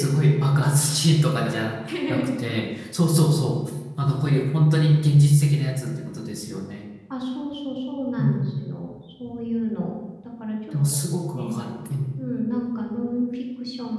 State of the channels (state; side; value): identical; both; correlation 1.00